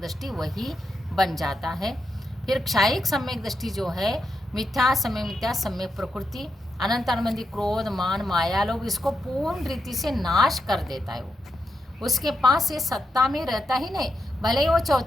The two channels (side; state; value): both; normal; correlation 0.85